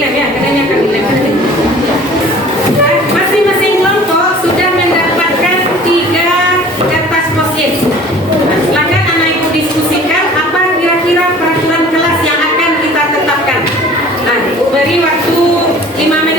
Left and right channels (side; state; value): both; normal; correlation 0.47